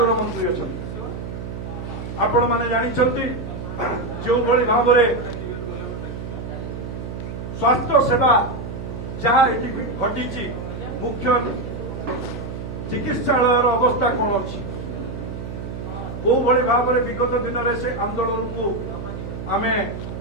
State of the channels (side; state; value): right; noise; hum, 8 dB below the sound